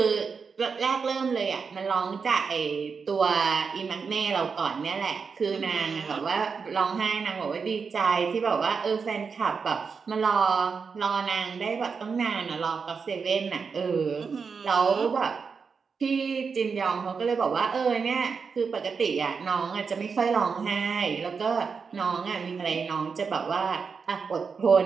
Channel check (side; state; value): left; quieter; 5.5 dB